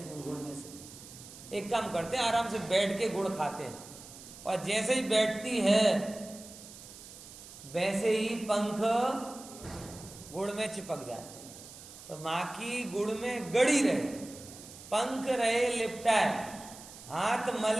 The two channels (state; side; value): noise; right; hiss, 16 dB below the sound